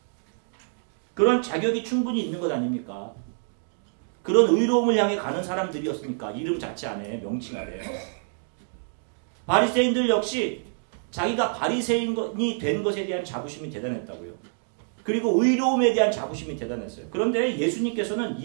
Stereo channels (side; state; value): left; silent; digital silence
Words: 그런 자격이 충분히 있는 것 아닙니까? 그런 의로움을 향해 가는 사람들이었습니까? 이름 자체 안에, 명칭 아래요. 바리새인들 역시 자기가 바리새인이 된 것에 대한 자부심이 대단했다고요. 그리고 의로움에 대한 자부심이 대단했어요. 그런데 예수님께서는